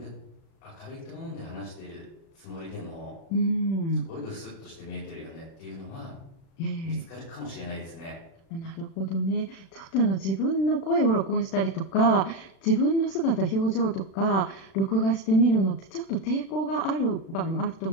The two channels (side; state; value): right; late; 36 ms